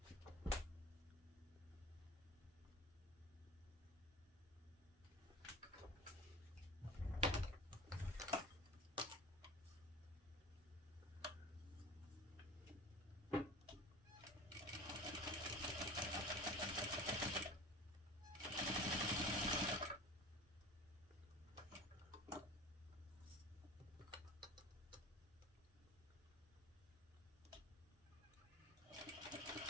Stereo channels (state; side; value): normal; both; correlation 0.35